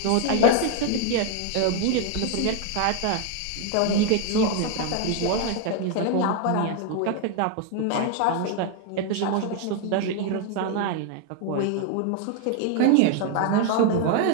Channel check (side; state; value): both; different; correlation 0.00